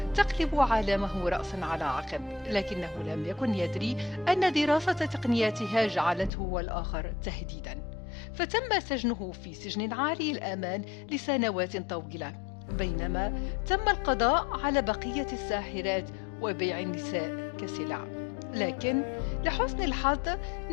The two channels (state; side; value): drops out; right; at 6.3 s